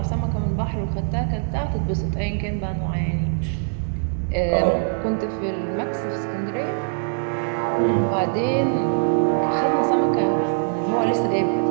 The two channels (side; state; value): left; silent; digital silence